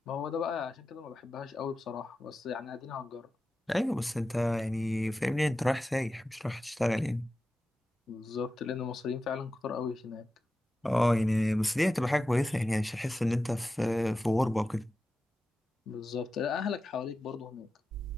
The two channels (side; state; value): both; normal; correlation 0.93